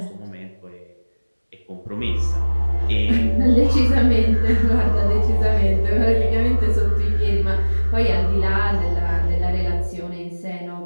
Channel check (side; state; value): both; inverted; correlation -1.00